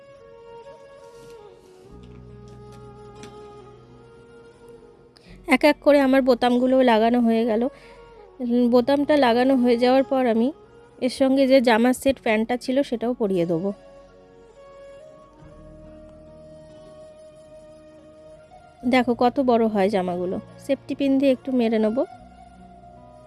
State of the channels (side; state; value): both; identical; correlation 1.00